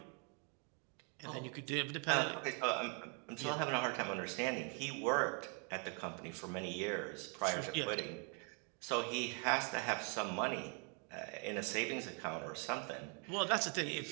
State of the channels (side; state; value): left; quieter; 37.5 dB